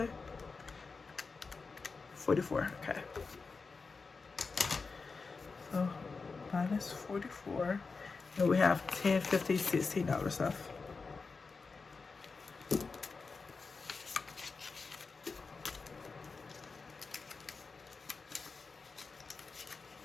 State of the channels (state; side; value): quieter; right; 4.5 dB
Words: 44. Okay. So minus 44, and we have $10, $50, $16 left.